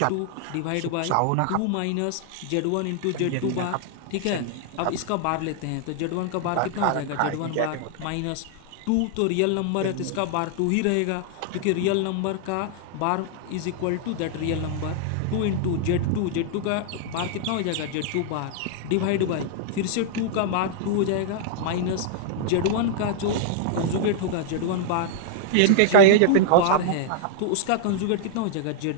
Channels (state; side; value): different; both; correlation -0.01